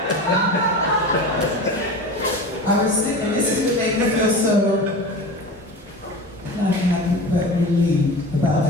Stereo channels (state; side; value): normal; both; correlation 0.32